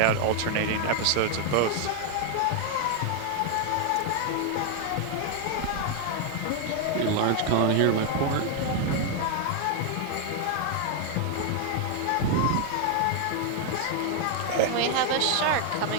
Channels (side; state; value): both; different; correlation 0.00